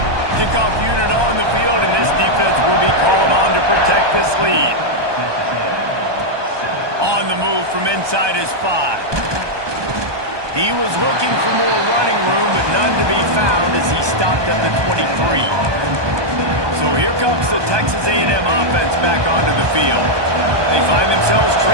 Kickoff unit on the field, and this defense will be called on to protect this lead. On the move from inside his 5. He was looking for more running room, but none to be found as he stopped at the 23. So here comes the Texas A&M offense back onto the field. They find themselves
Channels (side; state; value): left; late; 1.2 ms